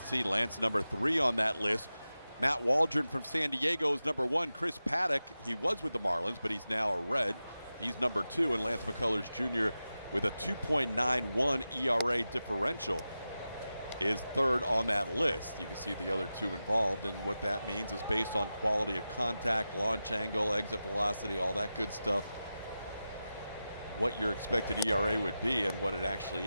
see, Lance number 3 on that list. Matt Waldron from San Diego is number 1. Chris Paddock, he was with the Marlins, but he's now a Red. He's number 2, and Lance McCullers Jr. with a 2.91 ERA differential is 3rd on that list. You can see the other 2 involved, and what that means is based on quality of contact, launch angle, exit velocity, all that good stuff, what your expected ERA would be and what it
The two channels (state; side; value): inverted; both; correlation -0.93